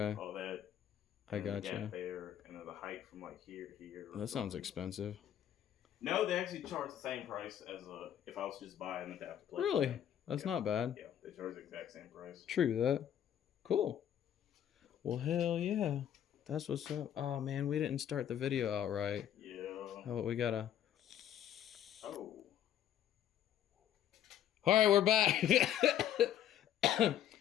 All that. I and the gotcha. gap there, and then the height from, like, here to here. That sounds expensive. No, they actually charge the same price as if I was just buying an adapter plate. Really? That's Yeah. not bad. Yeah, they charge the exact same price. True that. Cool. Well, hell yeah. That's what's up. Oh, man, we didn't start the video out right. Yeah. Oh, we gotta... Oh. All right, we're back.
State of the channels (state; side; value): quieter; right; 10.5 dB